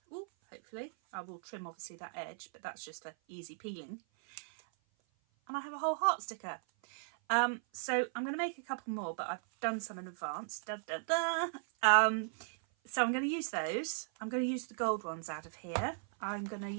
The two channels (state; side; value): silent; left; 53 dB below the other